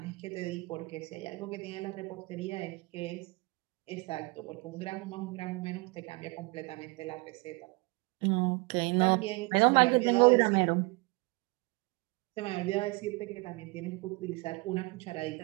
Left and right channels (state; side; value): quieter; left; 25.9 dB